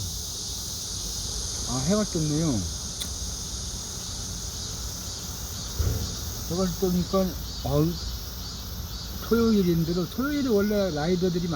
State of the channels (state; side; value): identical; both; correlation 1.00